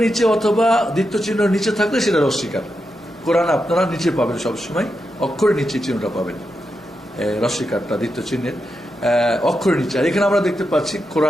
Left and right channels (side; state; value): both; normal; correlation 0.87